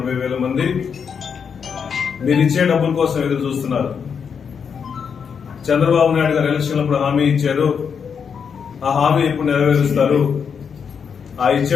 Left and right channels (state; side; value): quieter; right; 6.7 dB